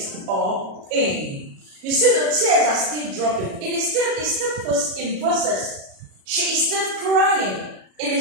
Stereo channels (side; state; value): left; late; 37 ms